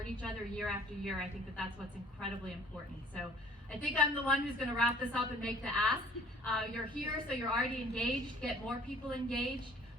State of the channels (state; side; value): normal; both; correlation 0.54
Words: each other year after year, I think that that's what's incredibly important. So I think I'm the one who's going to wrap this up and make the ask. You're here, so you're already engaged. Get more people engaged.